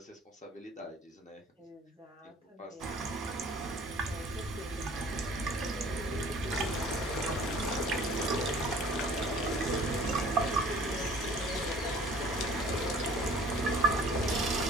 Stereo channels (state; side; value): normal; both; correlation 0.49